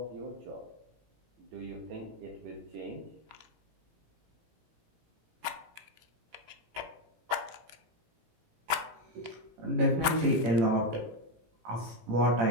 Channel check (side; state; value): left; late; 17 ms